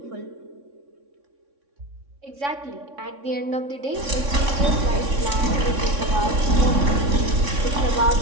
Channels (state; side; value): late; left; 3.6 ms